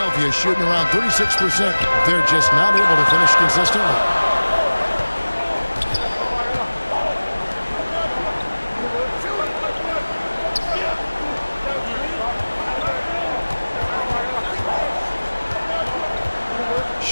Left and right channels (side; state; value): both; inverted; correlation -1.00